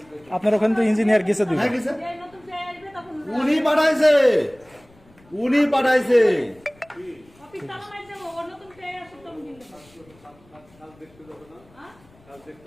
আপনার ওখানে তো ইঞ্জিনিয়ার গেছে দুই হ্যাঁ গেছে নতুন যে আসবে তখন উনি পাঠাইছে অফিস তালা মারছে ও নতুন যে আসবে তখন দিন কাজ দেখতে যাবে না কাজ দেখতে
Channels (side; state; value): left; noise; rumble, 29 dB below the sound